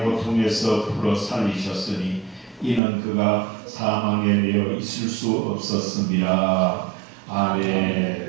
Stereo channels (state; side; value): drops out; left; at 2.8 s